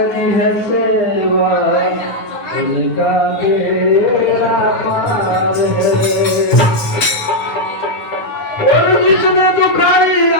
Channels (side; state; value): right; late; 9.6 ms